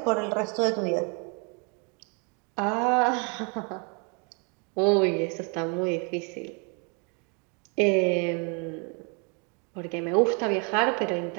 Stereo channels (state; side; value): quieter; left; 35.2 dB